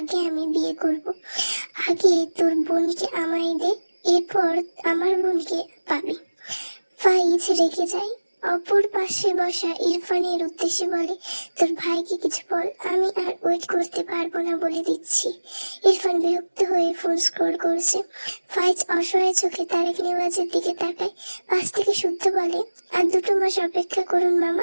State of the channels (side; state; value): both; inverted; correlation -1.00